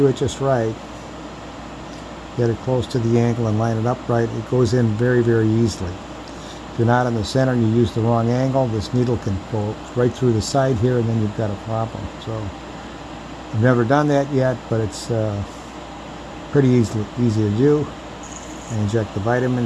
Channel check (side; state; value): both; identical; correlation 1.00